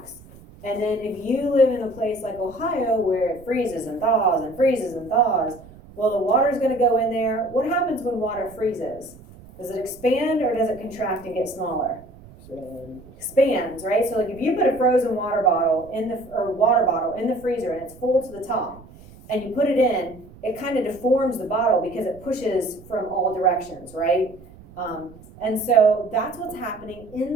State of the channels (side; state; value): right; noise; rumble, 21 dB below the sound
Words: And then if you live in a place like Ohio where it freezes and thaws and freezes and thaws, well, the water's going to go in there. What happens when water freezes? Does it expand or does it contract and get smaller? Expands, right? So like if you put a frozen water bottle in the freezer and it's full to the top, and you put it in, it kind of deforms the bottle because it pushes from all directions, right? And so that's what's happening